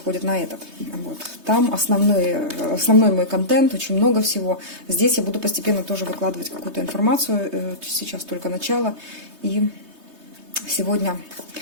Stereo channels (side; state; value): left; late; 3.2 ms